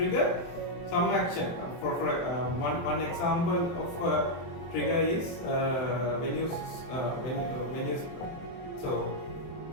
some action. For one example of trigger is when you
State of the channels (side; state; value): right; late; 23 ms